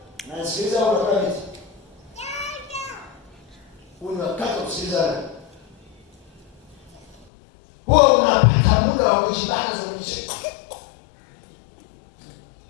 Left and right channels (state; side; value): drops out; right; at 7.2 s